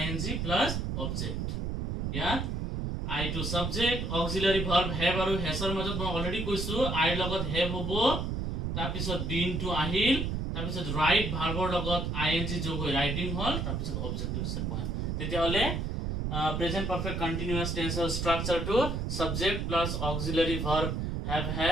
plus object. ইয়াত আই টু সাবজেক্ট, অক্সিলারি ভার্ব হ্যাভ আৰু হ্যাজৰ মাজত মই অলৰেডি কৈছো আইৰ লগত হ্যাভ হ'ব, তাৰপিছত বিন টু আহিল, তাৰপিছত ৰাইট ভাৰ্বৰ লগত আইএনজি যোগ হৈ ৰাইটিং হ'ল, তাৰপিছত অবজেক্ট হৈছে পয়েম। তেতিয়াহ'লে প্ৰেজেন্ট পাৰফেক্ট কন্টিনিউয়াস টেন্সৰ ষ্ট্ৰাকচাৰটো subject plus auxiliary verb have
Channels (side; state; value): right; noise; rumble, 1 dB below the sound